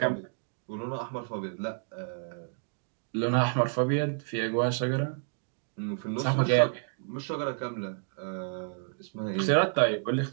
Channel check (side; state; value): left; silent; digital silence